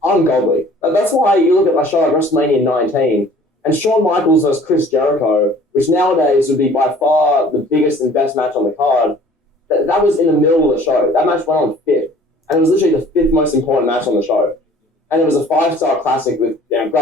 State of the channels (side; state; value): both; normal; correlation 0.51